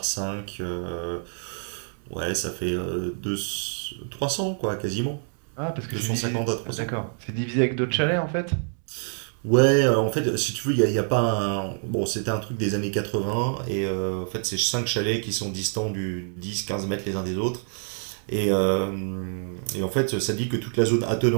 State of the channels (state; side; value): silent; left; 57 dB below the other